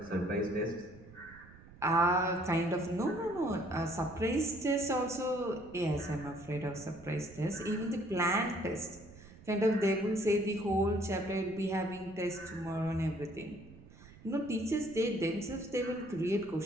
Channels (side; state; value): right; noise; rumble, 20 dB below the sound